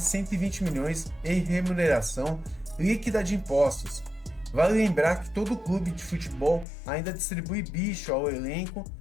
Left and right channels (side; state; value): right; drops out; at 6.7 s